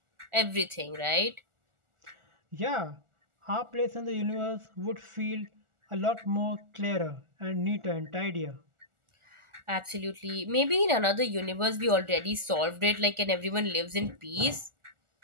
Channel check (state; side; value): late; left; 1.4 ms